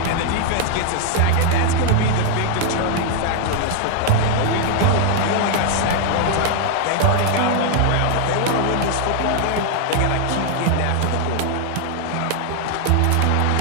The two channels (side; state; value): both; different; correlation 0.00